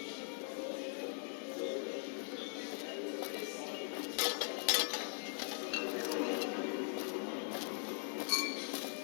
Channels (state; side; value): silent; right; 50 dB below the other